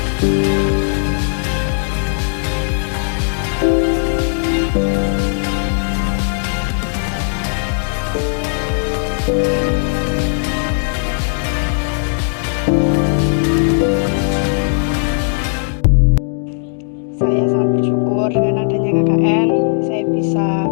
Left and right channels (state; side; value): silent; right; digital silence